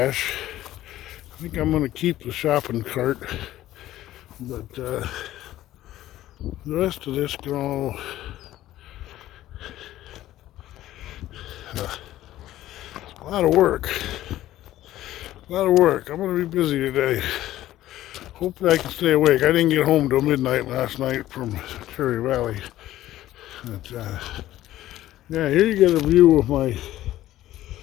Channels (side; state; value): right; quieter; 14.3 dB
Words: I think I'm going to keep the shopping cart, but the rest of this can all a lot of work. A lot of work. I'm going to be busy today. Hopefully I can stay awake. I didn't get home till midnight last night from Cherry Valley. But, yeah, here you get a view of my